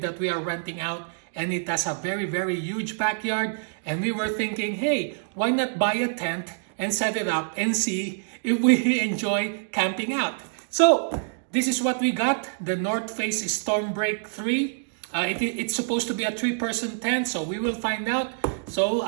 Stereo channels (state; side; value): silent; left; digital silence